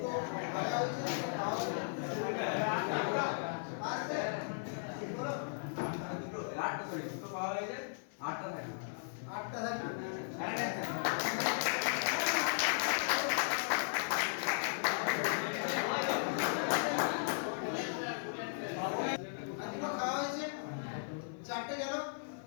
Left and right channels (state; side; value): silent; right; 53 dB below the other